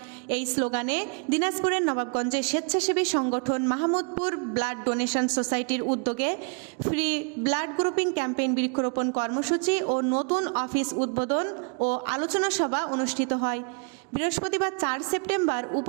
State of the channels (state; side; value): quieter; left; 38.3 dB